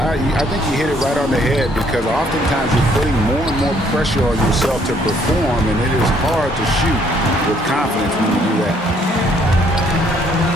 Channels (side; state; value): both; normal; correlation 0.65